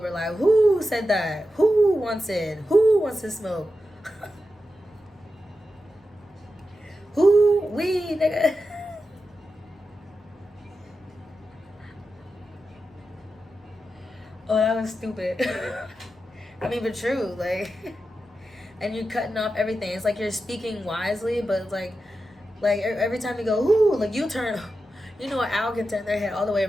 Like, who said that? Who wants it? Who wants to smoke? Who? We, nigga. Oh, that was stupid. I mean, but true. Like, and you're cutting off everything. It's like you're speaking wisely, but it's like every time you go, ooh, like you turn. You know, an owl can turn their head all the way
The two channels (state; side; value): normal; both; correlation 0.90